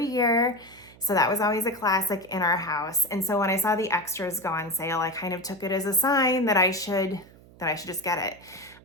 year. So that was always a classic in our house. And so when I saw the extras go on sale, I kind of took it as a sign that I should just get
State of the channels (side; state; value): right; noise; hum, 24 dB below the sound